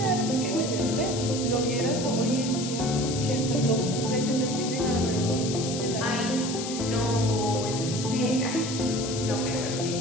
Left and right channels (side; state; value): left; noise; hiss, 7 dB below the sound